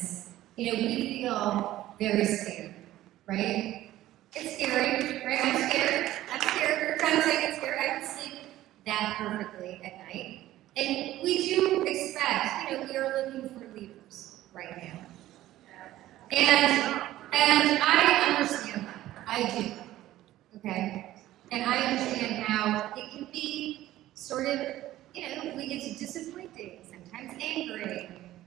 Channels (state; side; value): quieter; left; 14.7 dB